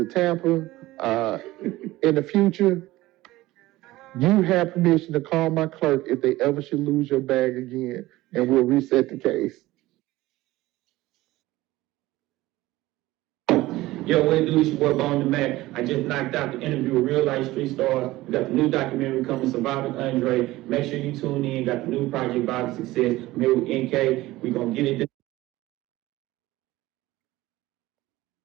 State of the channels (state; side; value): quieter; left; 17.8 dB